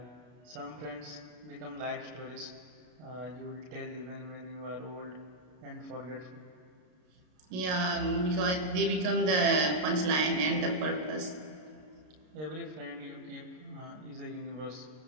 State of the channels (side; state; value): left; late; 33 ms